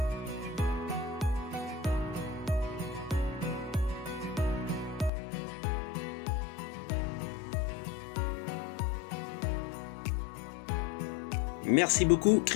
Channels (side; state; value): right; drops out; at 5.1 s